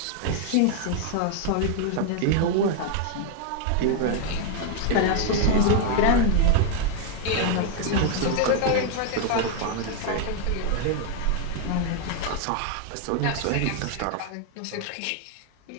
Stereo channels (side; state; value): both; different; correlation 0.00